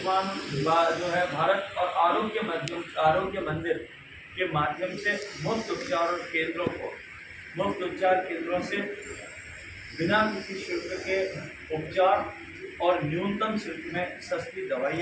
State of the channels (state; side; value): identical; both; correlation 1.00